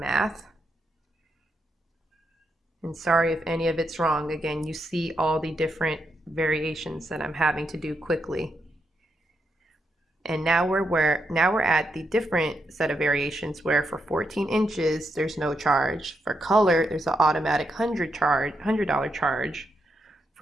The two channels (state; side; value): normal; both; correlation 0.82